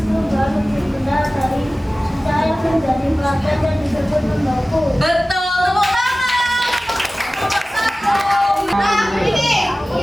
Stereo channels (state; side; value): normal; both; correlation 0.96